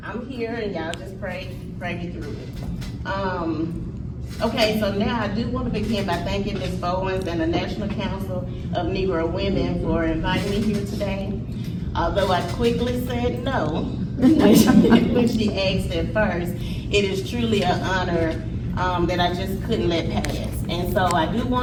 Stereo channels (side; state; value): both; identical; correlation 1.00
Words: I'm here and y'all just pray me through it. Okay, so now I do want to begin by thanking Ms. Bowens and the National Council of Negro Women for inviting me here today. Although I quickly said no when she asked at first, it is truly an honor that I just couldn't let pass. And so I do